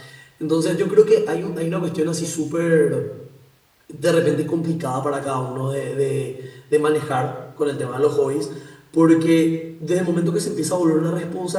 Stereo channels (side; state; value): both; identical; correlation 1.00